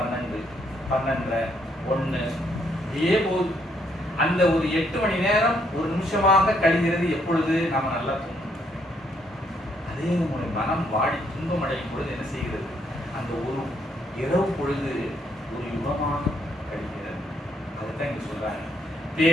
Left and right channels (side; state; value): both; normal; correlation 0.72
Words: 12, 1 இதே போது அந்த ஒரு 8 மணி நேரம் ஒரு நிமிஷமாக கழிகிறது எப்பொழுது நாம நல்லா தூங்கும். அதே நம்முடைய மனம் வாடி துன்பம் அடையும் பொழுது என்ன செய்கிறது, அந்த ஒரு இரவு பொழுது ஒரு யுகமாக கழிகிறது. அதுதான் இங்க சொல்றாங்க,